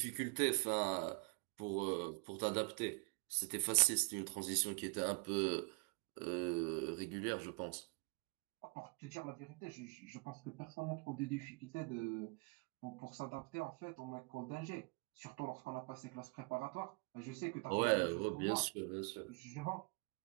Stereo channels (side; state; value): left; quieter; 31.9 dB